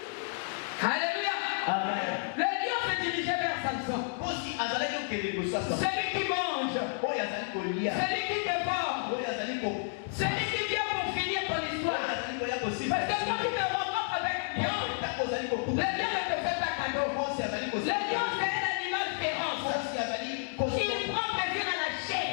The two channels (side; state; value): right; silent; digital silence